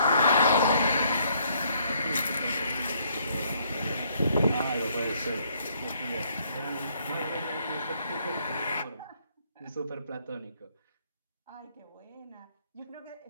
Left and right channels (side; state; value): both; inverted; correlation -0.68